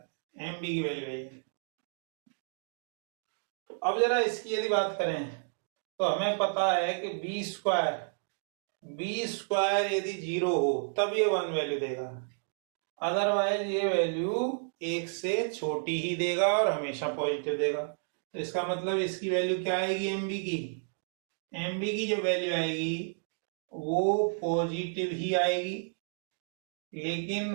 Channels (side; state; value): left; silent; digital silence